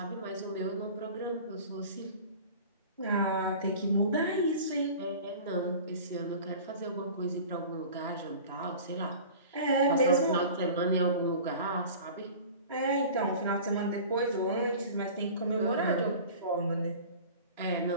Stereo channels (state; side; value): inverted; both; correlation -0.40